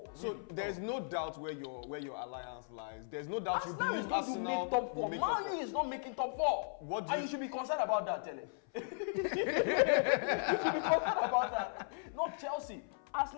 So really. there's no doubt where your alliance lies. There's no doubt you Arsenal believe is going to Arsenal make top will 4. make top Man U is not making top 4. What do And you- you should be concerned about that, Tele. You should be concerned about that. Not Chelsea.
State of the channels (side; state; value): right; silent; 53 dB below the other